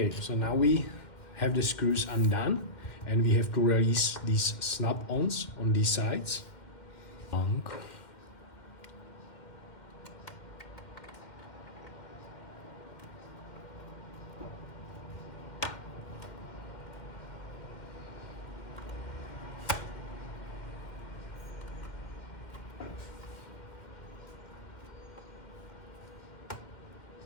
so now we have the screws undone, and we have to release these snap-ons on these sides.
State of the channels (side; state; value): right; late; 2.1 ms